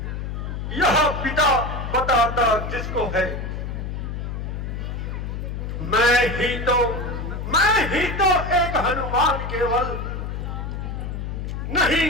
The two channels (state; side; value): noise; left; hum, 5 dB below the sound